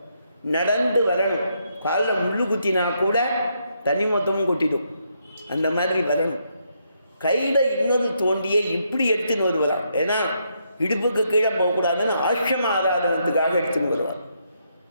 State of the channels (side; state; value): both; inverted; correlation -0.77